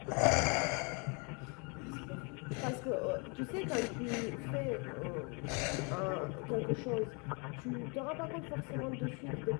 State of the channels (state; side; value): quieter; right; 33.7 dB